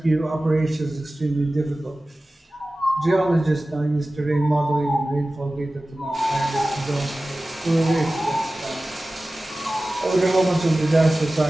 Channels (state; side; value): normal; both; correlation 0.96